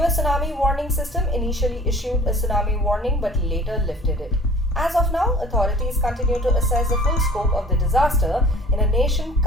tsunami warning system initially issued a tsunami warning but later lifted it. As of now, authorities continue to assess the full scope of the disaster in a nation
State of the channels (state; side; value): normal; both; correlation 0.48